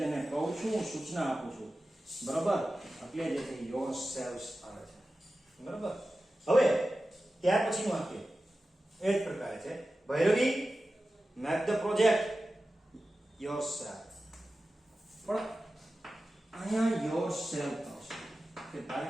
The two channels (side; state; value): both; normal; correlation 0.94